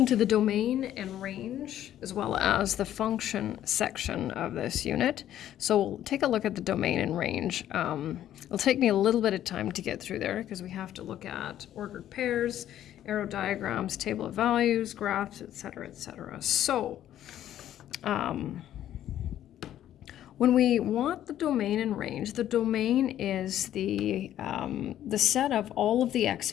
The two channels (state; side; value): quieter; right; 11.7 dB